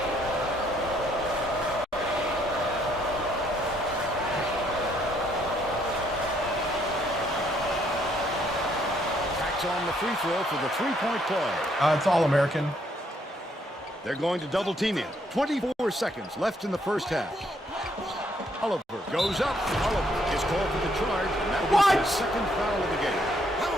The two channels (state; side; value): normal; both; correlation 0.70